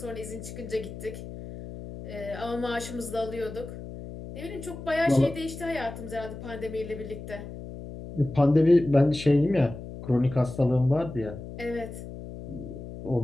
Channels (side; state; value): left; noise; hum, 11 dB below the sound